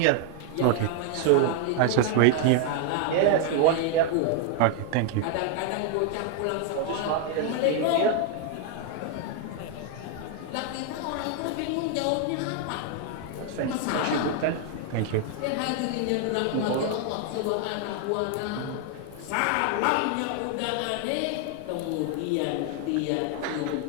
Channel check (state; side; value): different; both; correlation 0.00